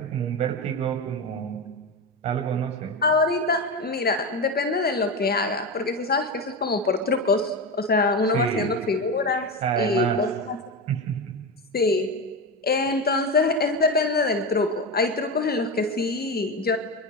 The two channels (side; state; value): both; normal; correlation 0.18